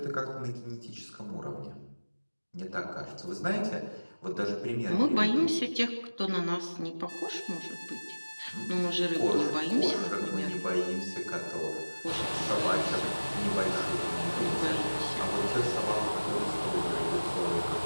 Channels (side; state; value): both; inverted; correlation -1.00